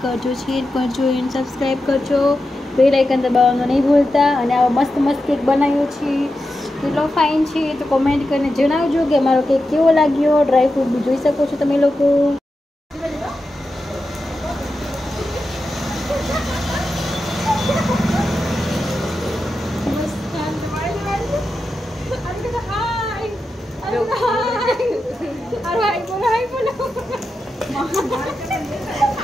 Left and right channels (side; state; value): both; normal; correlation 0.90